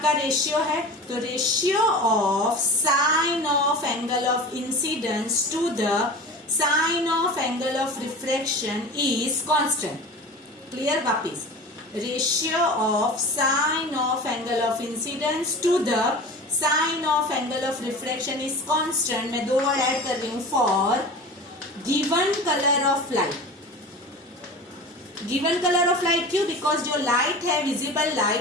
रेशियो है, तो ratio of sine of angle of incidence to the sine of angle of refraction is constant. Clear? वापिस, ratio of sine of angle of incidence to the sine of angle of refraction is constant. मैं 2 वर्ड ऐड कर रही हूं, for given colour of light. Given colour of light क्यों? बिकॉज जो लाइट है, visible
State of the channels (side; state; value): both; normal; correlation 0.35